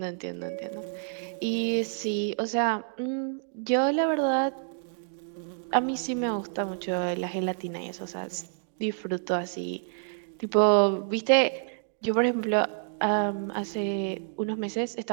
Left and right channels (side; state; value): left; silent; digital silence